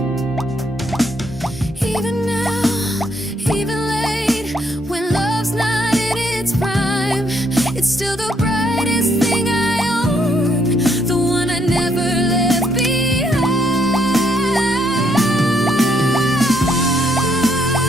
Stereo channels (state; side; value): normal; both; correlation 0.72